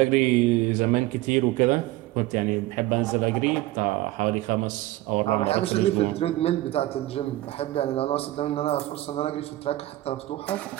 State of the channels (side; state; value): left; quieter; 16.9 dB